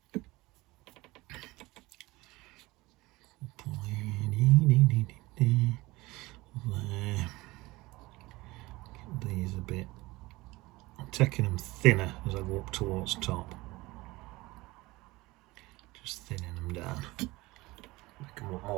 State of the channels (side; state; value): left; quieter; 20.8 dB